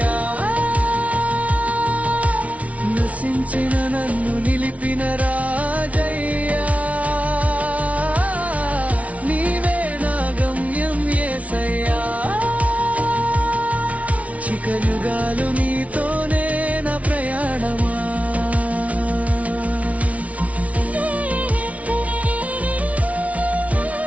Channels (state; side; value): late; left; 0.067 ms